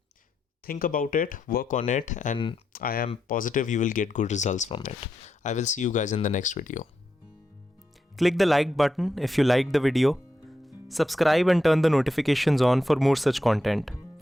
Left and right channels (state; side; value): normal; both; correlation 0.84